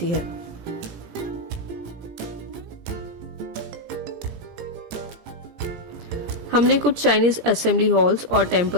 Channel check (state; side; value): late; left; 17 ms